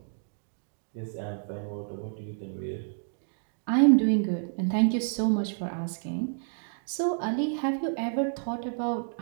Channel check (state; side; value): silent; left; digital silence